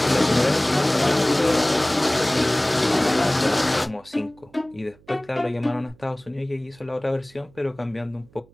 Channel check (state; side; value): noise; right; hum, 28 dB below the sound